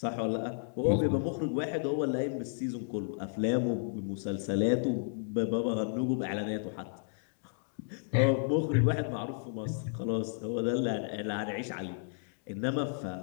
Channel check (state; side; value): silent; right; digital silence